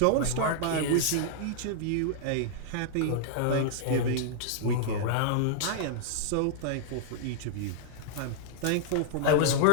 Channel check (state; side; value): different; both; correlation -0.01